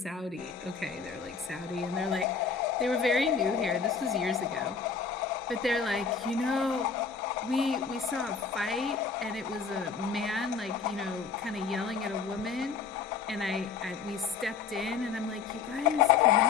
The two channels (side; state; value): right; quieter; 5.7 dB